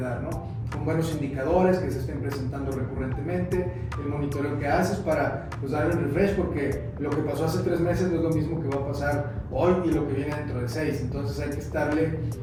¿no? Con buenos indicadores que se estén presentando recurrentemente, el monitoreo que haces para pues, darle un refresh, porque lo que pasó hace 3 meses no es lo mismo que va a pasar hoy y lo que viene dentro de 6, entonces hay que estarle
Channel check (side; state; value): both; identical; correlation 1.00